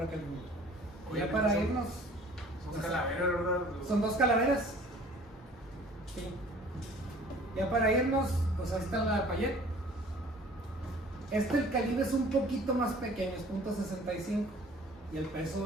aquel mundo. Oye, Ya para irnos, son calaveras, ¿verdad? son 2 calaveras. Sí. Ya para irnos, pues ahí está la Payet. El calibre es un poquito más pequeño, es .65 y el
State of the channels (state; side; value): normal; both; correlation 0.50